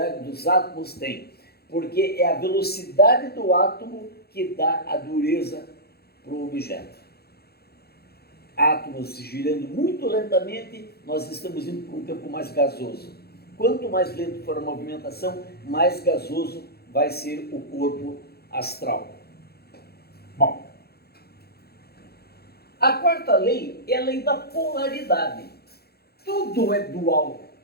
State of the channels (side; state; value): right; late; 0.46 ms